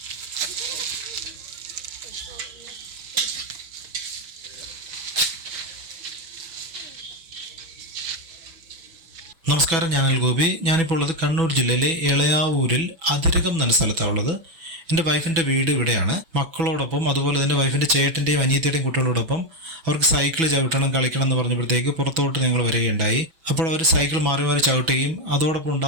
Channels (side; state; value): left; late; 6.1 ms